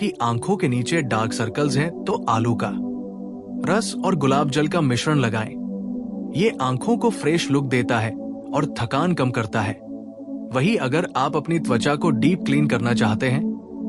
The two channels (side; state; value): both; identical; correlation 1.00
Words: आंखों के नीचे डार्क सर्कल्स हैं तो आलू का रस और गुलाब जल का मिश्रण लगाएं। ये आंखों को फ्रेश लुक देता है और थकान कम करता है। वहीं अगर आप अपनी त्वचा को डीप क्लीन करना चाहते